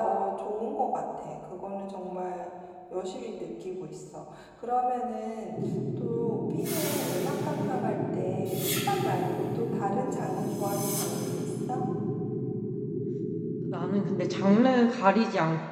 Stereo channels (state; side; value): identical; both; correlation 1.00